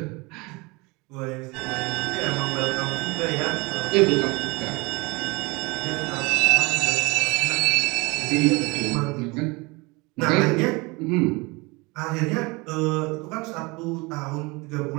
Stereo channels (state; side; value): quieter; left; 25.6 dB